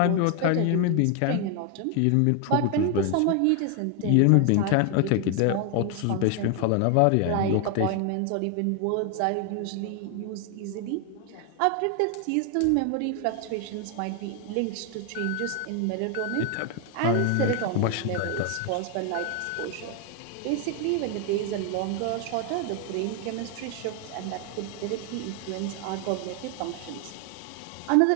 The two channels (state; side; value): different; both; correlation 0.00